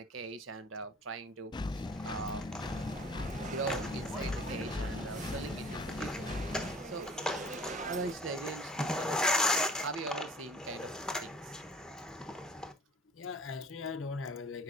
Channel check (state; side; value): normal; both; correlation 0.50